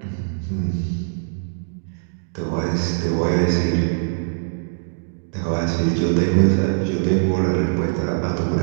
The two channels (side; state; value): left; silent; digital silence